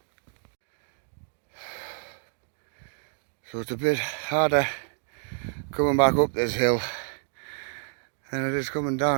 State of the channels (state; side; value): silent; left; digital silence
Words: So it's a bit harder coming back up this hill than it is coming